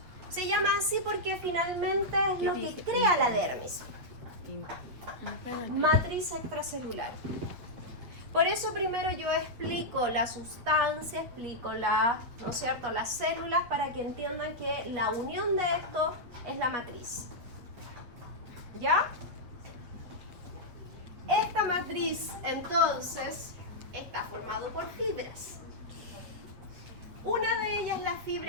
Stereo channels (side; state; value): left; late; 8.5 ms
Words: Se llama así porque finalmente es lo que crea la dermis. Matriz extracelular. Por eso primero yo explico la sustancia, explico ¿no es cierto?, las células para que entiendan que la unión de esto es la matriz. ¿Ya? Esta matriz entonces está formado por fibras. Una de ellas es la